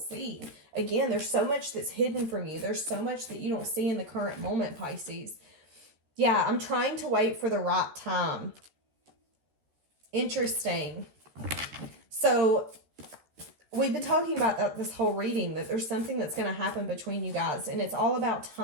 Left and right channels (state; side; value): late; left; 13 ms